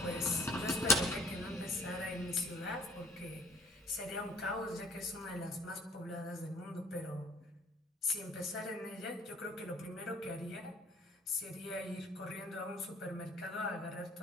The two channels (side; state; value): both; normal; correlation 0.55